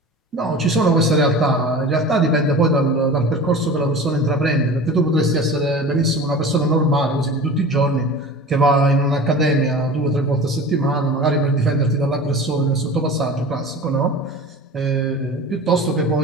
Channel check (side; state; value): both; normal; correlation 0.36